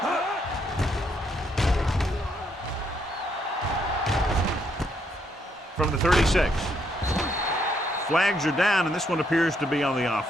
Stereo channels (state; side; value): normal; both; correlation 0.74